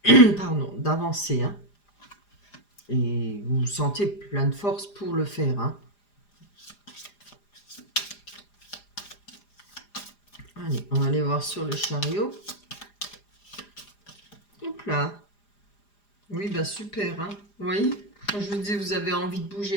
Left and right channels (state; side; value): late; right; 4.9 ms